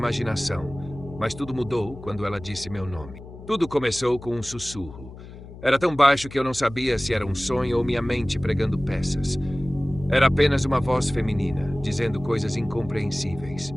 mas tudo mudou quando ela disse meu nome. Tudo começou com um sussurro. Era tão baixo que eu não sabia se era um sonho ou minha mente pregando peças. Era apenas uma voz feminina, dizendo coisas incompreensíveis.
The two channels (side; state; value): left; noise; hum, 15 dB below the sound